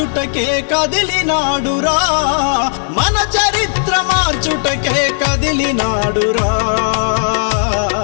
కదిలినాడురా, మన చరిత్ర మార్చుటకే కదిలినాడురా.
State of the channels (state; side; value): silent; right; 66 dB below the other